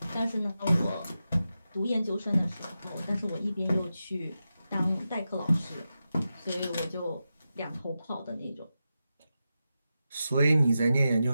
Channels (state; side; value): inverted; both; correlation -0.90